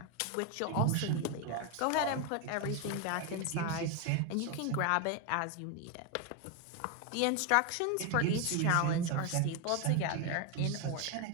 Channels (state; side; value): different; both; correlation 0.01